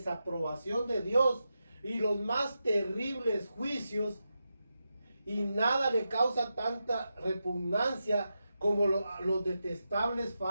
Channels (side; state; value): both; inverted; correlation -0.89